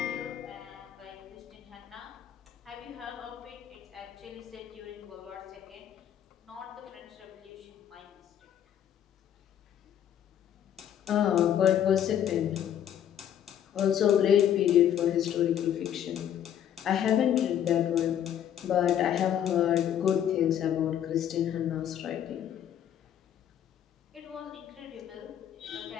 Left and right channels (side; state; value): right; quieter; 10.1 dB